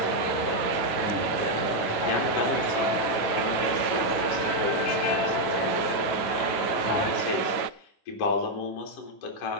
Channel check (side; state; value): right; late; 9.3 ms